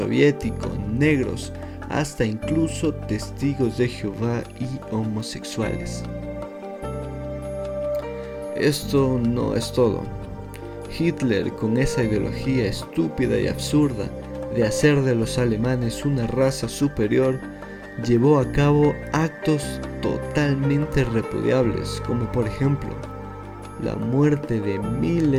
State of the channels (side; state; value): both; identical; correlation 1.00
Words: negros, hasta incluso testigos de Jehová y homosexuales. Esto no es todo. Hitler, con esa ideología estúpida y absurda de hacer de los alemanes una raza superior, llevó a cabo actos totalmente repudiables, como por ejemplo, la muerte de